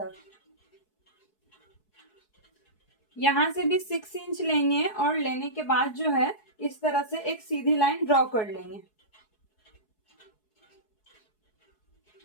यहाँ से भी 6 इंच लेंगे और लेने के बाद जो है इस तरह से एक सीधी लाइन ड्रॉ कर लेंगे।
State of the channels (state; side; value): late; right; 4.7 ms